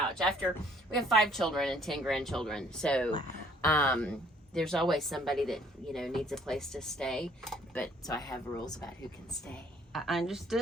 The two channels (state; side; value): normal; both; correlation 0.61